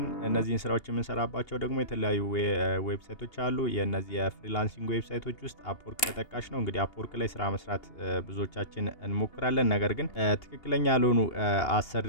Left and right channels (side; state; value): right; late; 2.8 ms